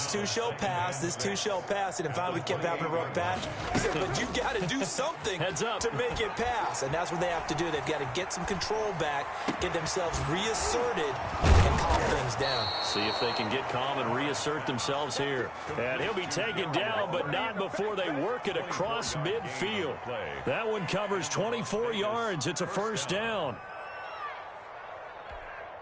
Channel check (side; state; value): both; identical; correlation 1.00